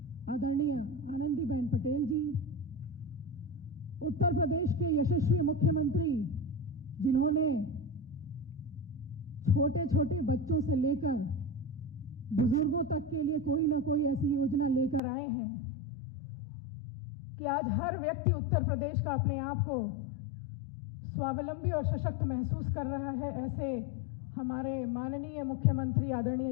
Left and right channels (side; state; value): right; drops out; at 15.0 s